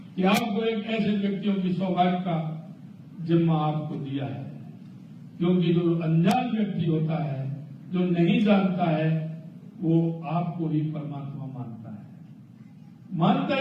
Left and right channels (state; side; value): identical; both; correlation 1.00